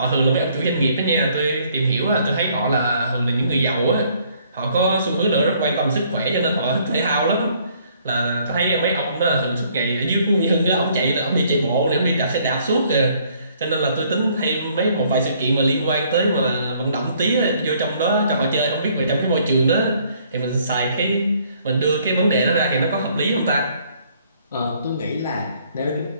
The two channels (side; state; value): both; inverted; correlation -0.64